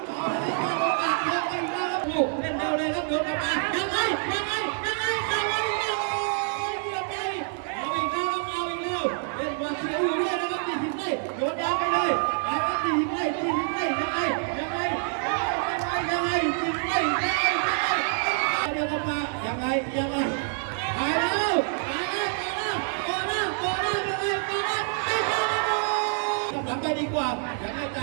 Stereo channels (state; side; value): silent; left; 60 dB below the other